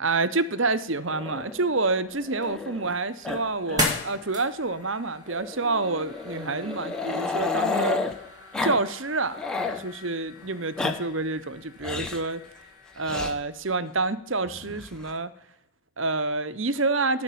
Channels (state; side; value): normal; both; correlation -0.16